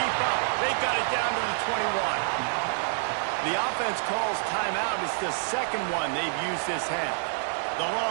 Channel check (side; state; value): left; silent; 60 dB below the other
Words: up. They've got it down to the 21. The offense calls timeout. It's the second one they've used this half. The